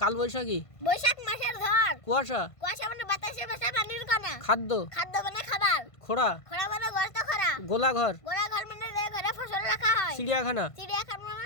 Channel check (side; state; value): right; late; 1.5 ms